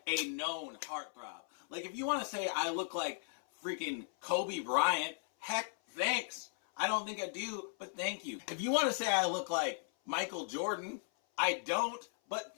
a known heartthrob. Like if you want to say I look like freaking Kobe Bryant, heck, thanks. I don't think I do, but thank you. If you want to say I look like Michael Jordan, I don't, but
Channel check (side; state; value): right; silent; 53 dB below the other